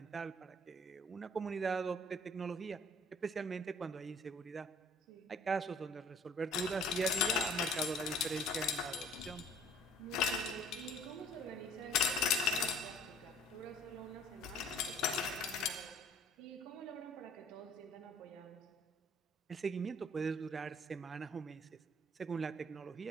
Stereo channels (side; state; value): both; normal; correlation 0.54